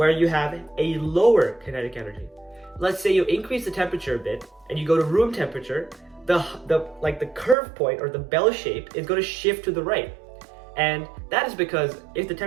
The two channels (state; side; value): drops out; left; at 7.6 s